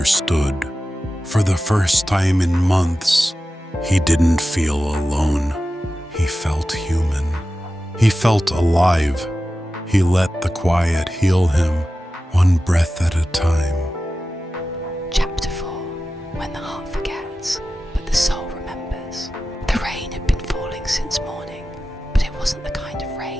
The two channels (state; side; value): normal; both; correlation 0.94